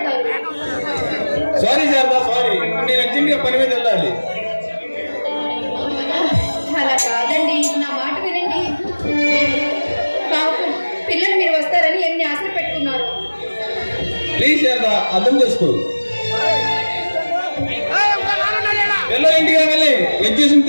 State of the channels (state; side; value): inverted; both; correlation -1.00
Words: సారీ సరదా, సారీ. నేను అర్జెంట్గా పని మీద వెళ్ళాలి. అలా కాదండి, నా మాట వినండి. పాపం పిల్లలు మీరు వస్తారని ఎన్ని ఆశలు పెట్టుకున్నారు. ప్లీజ్ సరదా అర్థం చేసుకో. పిల్లలు ఇంటికి వెళ్ళి ఎగ్జిబిషన్